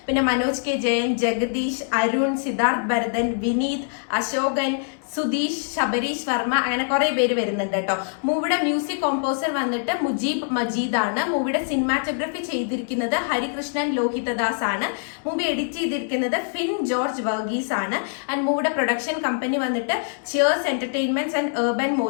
പിന്നെ മനോജ് കെ ജയൻ, ജഗദീഷ്, അരുൺ, സിദ്ധാർത്ഥ് ഭരതൻ, വിനീത്, അശോകൻ, സുധീഷ്, ശബരീഷ് വർമ്മ, അങ്ങനെ കുറെ പേര് വരുന്നുണ്ട് കേട്ടോ. മൂവിയുടെ മ്യൂസിക് കോമ്പോസർ വന്നിട്ട് മുജീബ് മജീദ് ആണ്. മൂവിയുടെ സിനിമാറ്റോഗ്രഫി ചെയ്തിരിക്കുന്നത് ഹരികൃഷ്ണൻ ലോഹിതദാസ് ആണ്. മൂവി എഡിറ്റ് ചെയ്തിരിക്കുന്നത് ഫിൻ ജോർജ് വർഗീസ് ആണ്. ആൻഡ് മൂവിയുടെ പ്രൊഡക്ഷൻ കമ്പനി വന്നിട്ട് Cheers Entertainments and urban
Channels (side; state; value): right; silent; 63 dB below the other